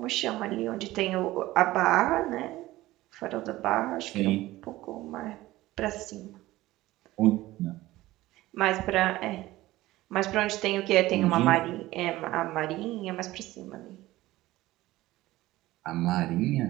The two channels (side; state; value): left; quieter; 17.3 dB